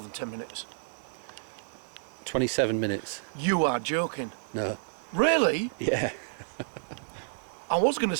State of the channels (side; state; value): left; silent; digital silence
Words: 10 minutes. 27 minutes. You are joking. No. Really? Yeah. I was going to